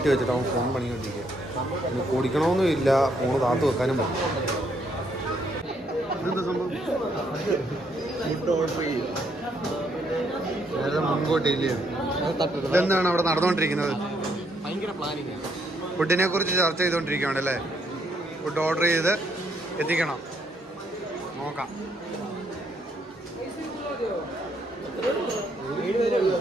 വെച്ചിട്ട് അവൻ ഫോൺ പണിക്കൊണ്ടിരിക്കുക. പിന്നെ കുടിക്കണമെന്നും ഇല്ല, ഫോണ് താത്തു വെക്കാനും പറ്റും. ഇതെന്താ സംഭവം? നേരത്തെ മുൻകൂട്ടിയില്ലേ? ഇതെന്താണ് അവിടെ നടന്നുകൊണ്ടിരിക്കുന്നത്? ഫുഡിനെ കുറിച്ച് ചർച്ച ചെയ്തുകൊണ്ടിരിക്കുകയാണ് അല്ലേ? ഫുഡ് ഓർഡർ ചെയ്ത് എത്തിക്കണം. നോക്കാം.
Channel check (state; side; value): normal; both; correlation 0.72